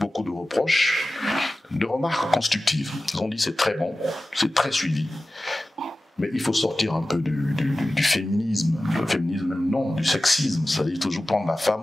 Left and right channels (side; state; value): both; normal; correlation 0.95